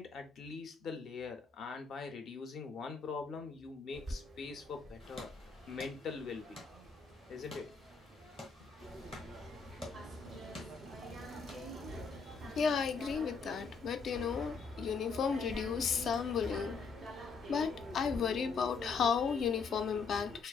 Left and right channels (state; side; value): quieter; right; 5.2 dB